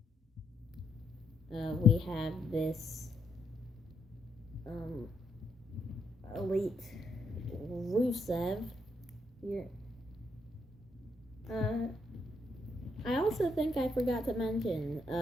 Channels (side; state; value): both; normal; correlation 0.76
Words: We have this elite Rusev here. I also think I forgot to mention